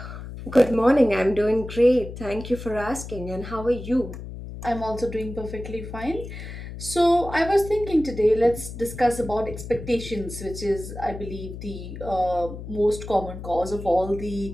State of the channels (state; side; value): noise; left; hum, 10 dB below the sound